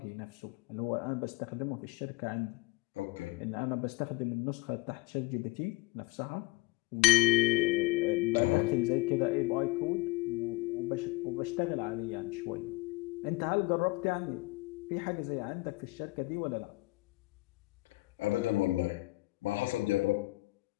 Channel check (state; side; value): quieter; right; 21.9 dB